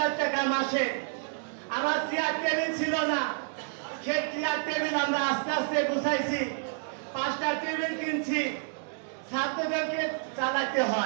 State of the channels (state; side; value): silent; left; 58 dB below the other